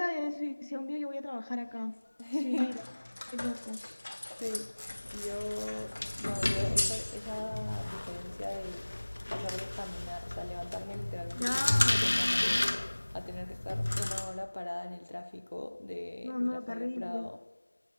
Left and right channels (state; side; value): inverted; both; correlation -1.00